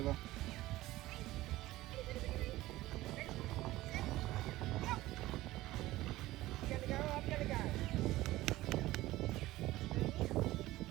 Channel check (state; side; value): quieter; left; 17.1 dB